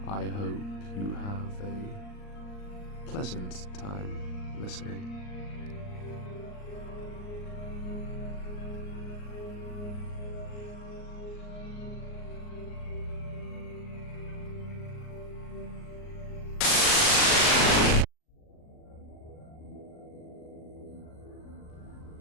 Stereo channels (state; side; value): late; right; 39 ms